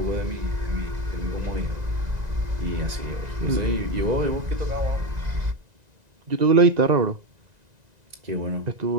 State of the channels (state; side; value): late; left; 1.9 ms